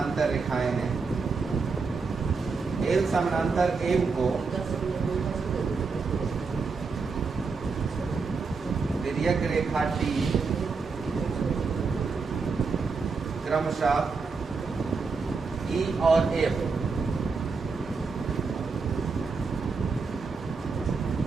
रेखाएं हैं। एल समानांतर एम को तिर्यक रेखा टी क्रमशः ई और एफ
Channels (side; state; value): left; quieter; 4.7 dB